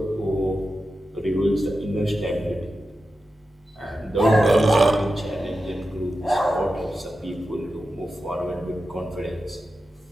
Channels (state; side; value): normal; both; correlation 0.91